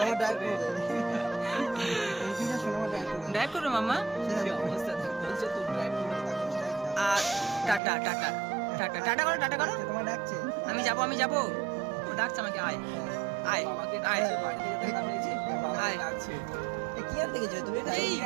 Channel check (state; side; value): drops out; left; at 7.8 s